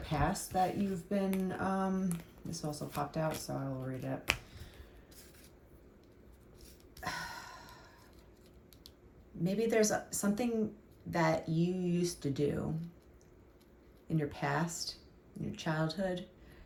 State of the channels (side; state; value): both; identical; correlation 1.00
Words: that you've been, this also popped out, so I will read it. Maybe there's something that you used to do in your past, in your childhood,